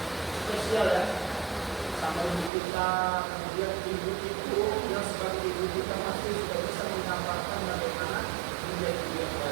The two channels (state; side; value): drops out; left; at 2.5 s